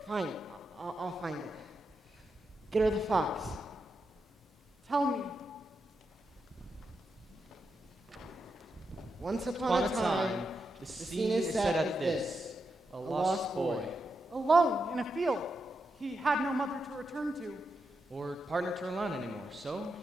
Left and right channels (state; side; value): normal; both; correlation 0.86